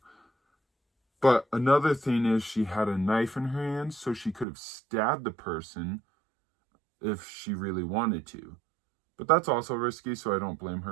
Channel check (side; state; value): left; drops out; at 4.5 s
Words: But another thing is, she had a knife in her hand, so she could have stabbed the person if she really wanted to. But that's also risky, so I don't blame